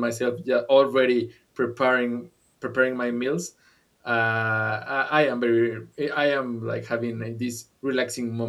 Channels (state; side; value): identical; both; correlation 1.00